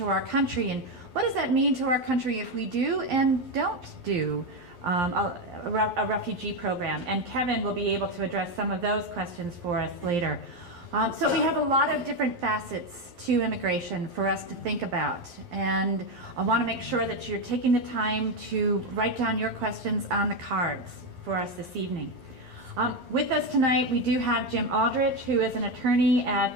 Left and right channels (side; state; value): left; late; 11 ms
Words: our country, and what does that mean to our country if we do and don't do a refugee program? And Kevin will be able to address some of those questions for us later. So we have a lot of different facets to immigration for us to think about, and I want to make sure that you're taking the time to write down your questions on the cards for us this evening. With us tonight, we do have Jim Aldrich, who is an attorney